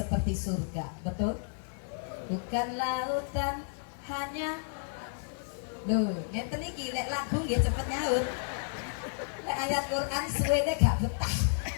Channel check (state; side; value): silent; right; digital silence